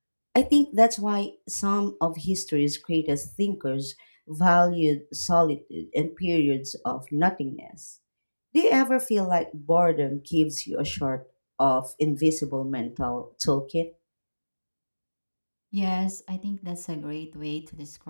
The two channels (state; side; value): inverted; both; correlation -1.00